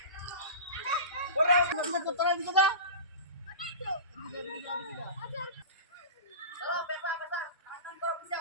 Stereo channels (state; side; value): inverted; both; correlation -0.31